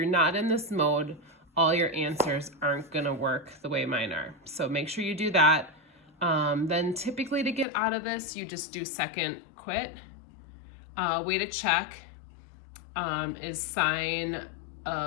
not in this mode, all your answers aren't going to work the way mine are. So make sure you do that. Then typically to get out of this, you just do second quit. Way to check is sine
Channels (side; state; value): right; drops out; at 7.7 s